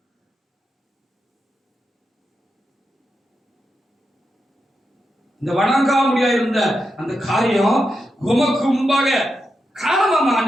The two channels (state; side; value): normal; both; correlation 0.87